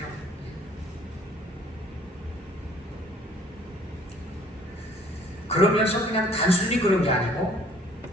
그러면서 그냥 단순히 그런 게 아니고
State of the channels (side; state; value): both; normal; correlation 0.57